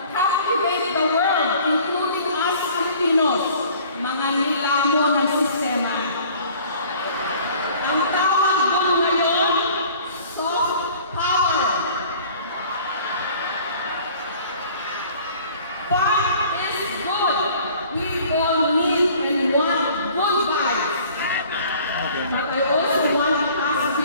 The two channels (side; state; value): both; inverted; correlation -0.51